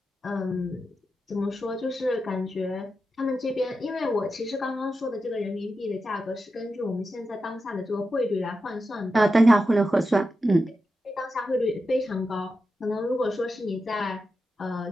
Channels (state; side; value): normal; both; correlation 0.89